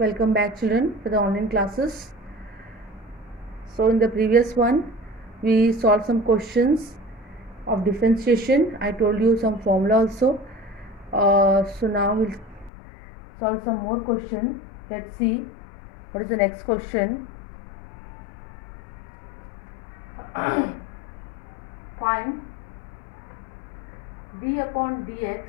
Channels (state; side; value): drops out; right; at 12.7 s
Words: Welcome back, children, for the online classes. So in the previous one we solved some questions of differentiation. I told you some formula also. So now we'll solve some more question. Let's see what is the next question. Find d upon dx